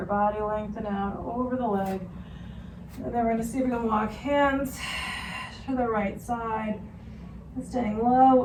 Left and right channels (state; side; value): identical; both; correlation 1.00